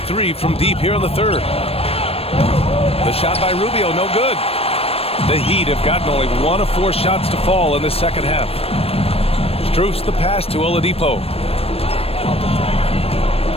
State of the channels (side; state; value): right; late; 0.28 ms